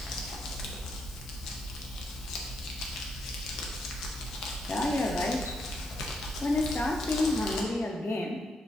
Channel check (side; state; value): both; normal; correlation 0.79